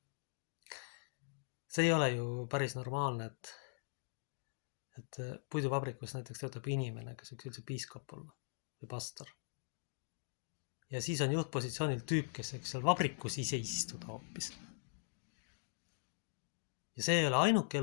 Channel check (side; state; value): right; silent; digital silence